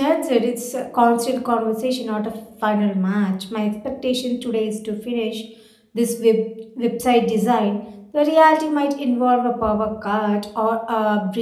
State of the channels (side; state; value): both; identical; correlation 1.00